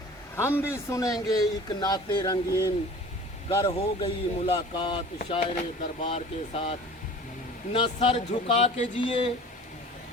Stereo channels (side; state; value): both; normal; correlation 0.43